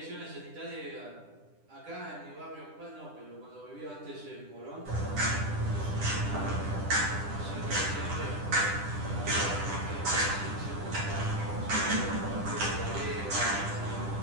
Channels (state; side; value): late; left; 10 ms